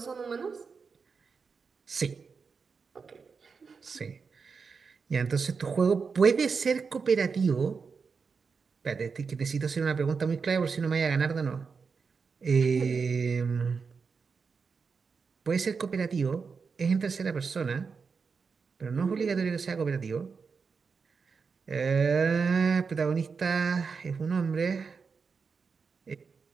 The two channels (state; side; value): quieter; left; 5.3 dB